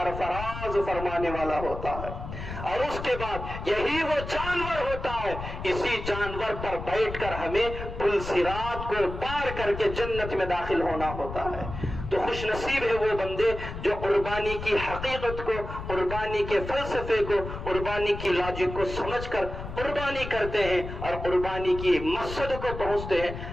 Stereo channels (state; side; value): noise; left; rumble, 8 dB below the sound